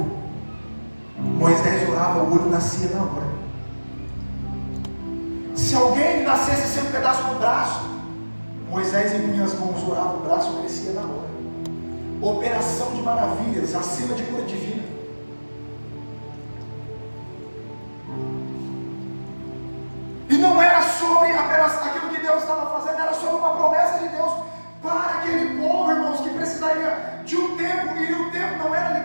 Moisés orava, o olho nascia na hora. Se alguém nascesse sem um pedaço do braço, Moisés impunha as mãos, orava, o braço crescia na hora. Operação de maravilhas, acima de cura divina. E não era sobre apenas aquilo que Deus estava fazendo, era sobre uma promessa de Deus para aquele povo, irmãos, que precisaria de um tempo, e o tempo não era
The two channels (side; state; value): both; inverted; correlation -1.00